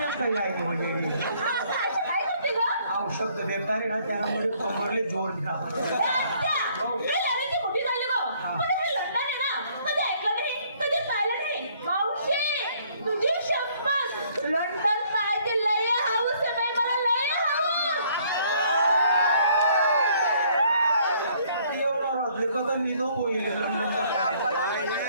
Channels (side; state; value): both; inverted; correlation -0.63